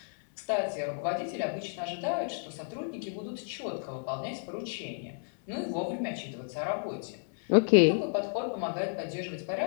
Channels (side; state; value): right; silent; 57 dB below the other